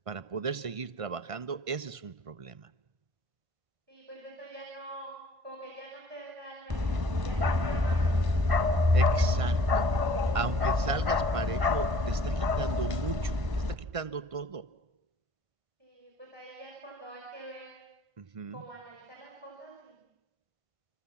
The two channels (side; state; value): left; late; 1.5 ms